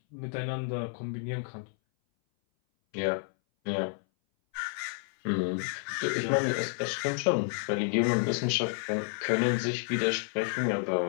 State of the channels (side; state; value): right; silent; 58 dB below the other